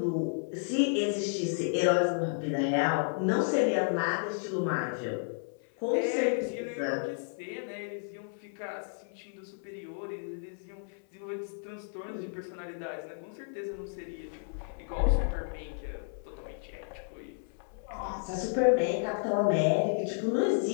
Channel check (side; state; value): right; silent; 56 dB below the other